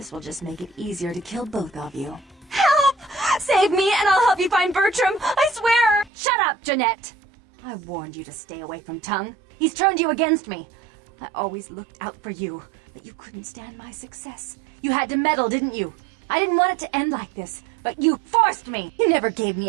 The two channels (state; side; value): drops out; left; at 6.1 s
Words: will just make it easier to kill both of you. Help! Save me and I'll help you find Bertram! I swear! Shut up, Jeanette! I warned you to stay away from Tongue. He's turned you against me. I always looked out for you, but you couldn't stand my success. You had to meddle, didn't you? I didn't want it to end like this, but you forced me! You never gave